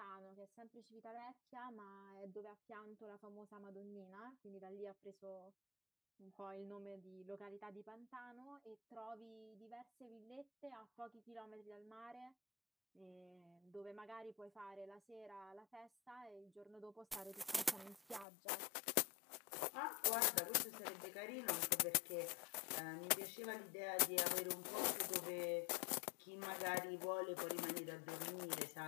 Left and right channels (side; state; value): right; drops out; at 18.2 s